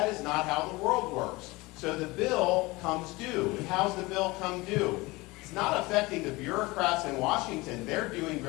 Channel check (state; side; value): quieter; right; 22.4 dB